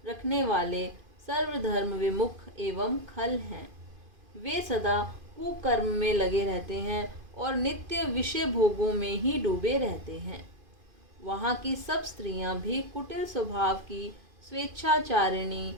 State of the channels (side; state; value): left; late; 2.5 ms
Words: रखने वाले सर्वधर्म विमुख एवं खल हैं। वे सदा कुकर्म में लगे रहते हैं और नित्य विषय भोगों में ही डूबे रहते हैं। वहाँ की सब स्त्रियां भी कुटिल स्वभाव की, स्वेच्छाचारिणी,